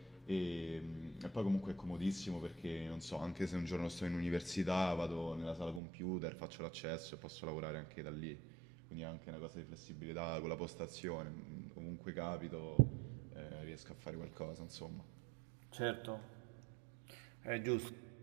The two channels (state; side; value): drops out; left; at 5.8 s